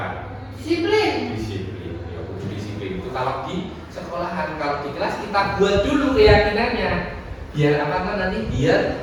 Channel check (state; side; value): identical; both; correlation 1.00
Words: Disiplin. Disiplin. Ya, disiplin itu kalau di sekolahan, kalau di kelas kita buat dulu keyakinannya. Biar apa kan nanti?